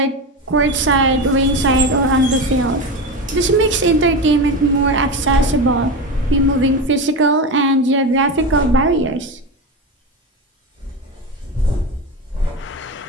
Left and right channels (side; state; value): both; normal; correlation 0.20